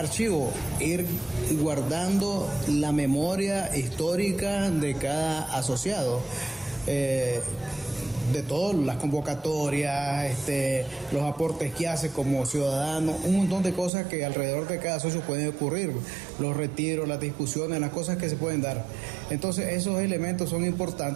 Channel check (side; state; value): left; drops out; at 13.9 s